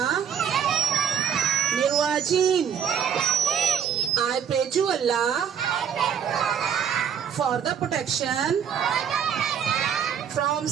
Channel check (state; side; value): quieter; left; 8.0 dB